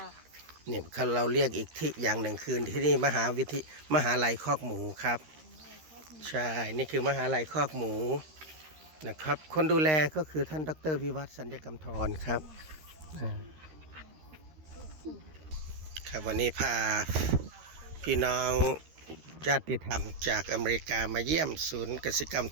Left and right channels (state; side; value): late; left; 13 ms